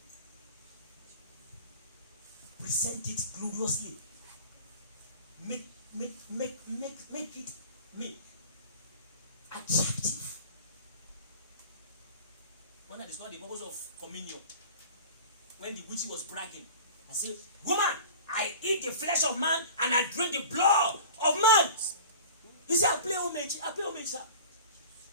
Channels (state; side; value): inverted; both; correlation -0.40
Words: Present it gloriously. Make it attractive. When I discovered the purpose of communion, when the witch was bragging, I said, "Woman, I eat the flesh of man and I drink the blood of man." You say, I pay homage, sir.